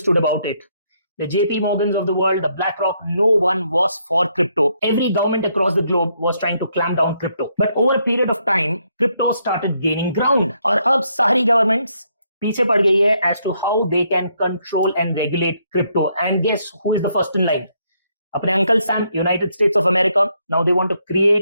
about it. The JP Morgans of the world, the BlackRock, no one was for crypto. Every government across the globe was trying to clamp down crypto. But over a period of time, crypto started gaining ground. और अब सारी governments पीछे पड़ गई है as to how they can control and regulate crypto. And guess who is the first in line? अपने Uncle Sam, United States of America. Now they want to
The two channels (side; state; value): both; inverted; correlation -0.74